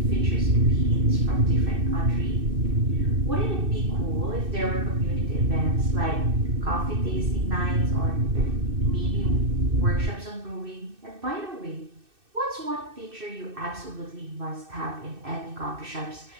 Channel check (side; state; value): left; late; 2.6 ms